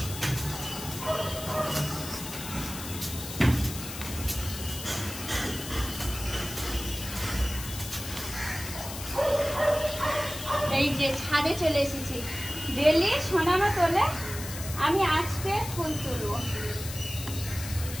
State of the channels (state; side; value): noise; left; hiss, 9 dB below the sound